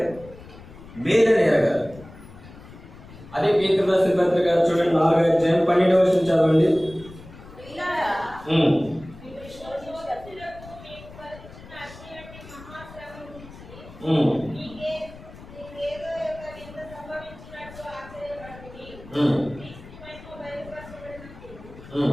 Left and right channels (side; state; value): left; noise; rumble, 18 dB below the sound